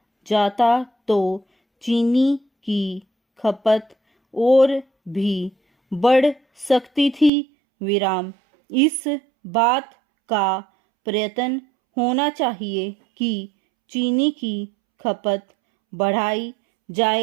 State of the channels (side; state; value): left; drops out; at 7.3 s